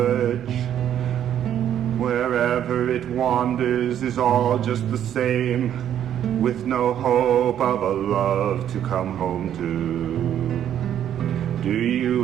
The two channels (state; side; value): quieter; left; 10.3 dB